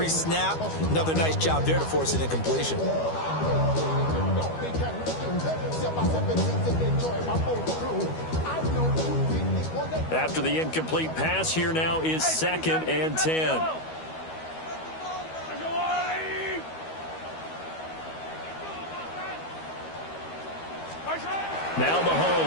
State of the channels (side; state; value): right; late; 12 ms